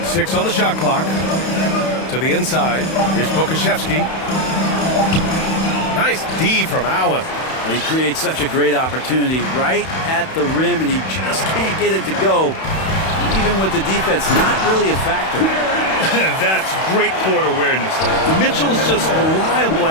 6 on the shot clock. To the inside. Here's Pokashevsky. Nice D from Allen. He creates such a great opportunity right at the rim, and he just can't get it to go. Even with the defense not really a factor. That's great court awareness. Mitchell's just reliable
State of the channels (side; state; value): right; late; 31 ms